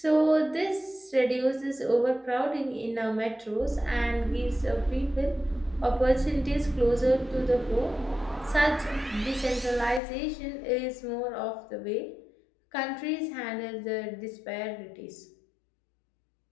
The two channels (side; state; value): right; drops out; at 10.0 s